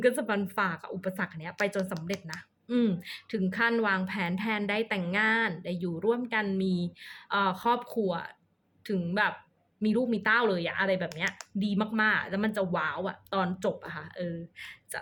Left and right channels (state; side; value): identical; both; correlation 1.00